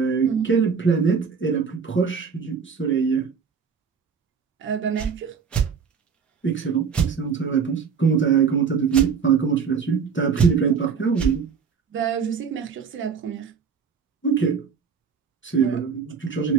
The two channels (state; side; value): quieter; left; 6.2 dB